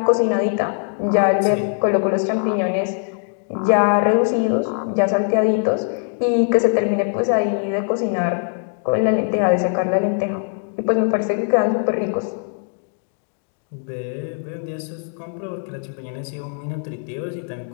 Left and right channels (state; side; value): silent; right; 65 dB below the other